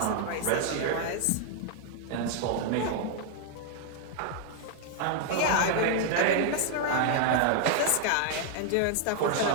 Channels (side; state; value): both; different; correlation 0.00